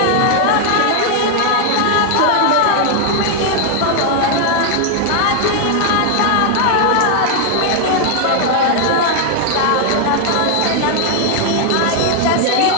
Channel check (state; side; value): different; both; correlation 0.00